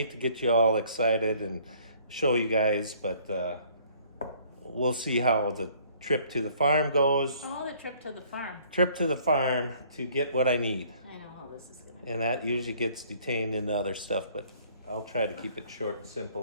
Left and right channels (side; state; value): both; inverted; correlation -0.59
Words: to get you all excited and show you guys, but we'll see how the trip to the farm goes. Oh, the trip to the farm. Trip to the farm to get what I need. I know how this is gonna And that usually gets detained into other stuff, but I'll try to keep it short and